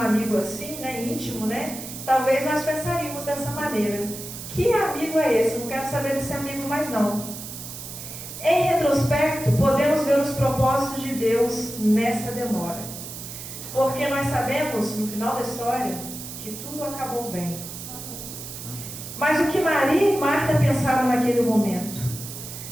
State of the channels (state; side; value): noise; right; hiss, 10 dB below the sound